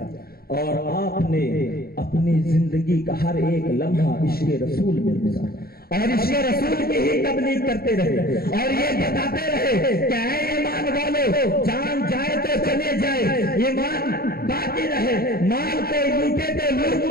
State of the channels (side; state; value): right; late; 0.44 ms